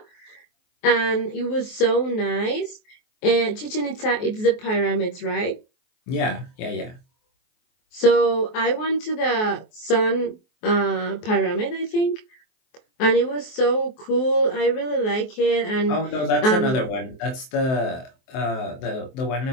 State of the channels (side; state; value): right; late; 23 ms